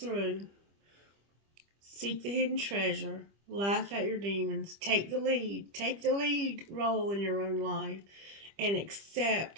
Seek the hidden treasure. Laugh at your demons. Take the lead. Take the lead role in your own life. And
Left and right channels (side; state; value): left; late; 25 ms